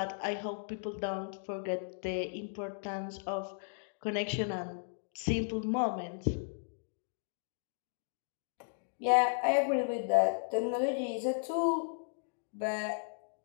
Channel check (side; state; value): right; silent; digital silence